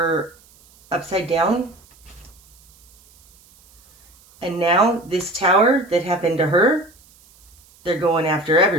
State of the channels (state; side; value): noise; right; hiss, 29 dB below the sound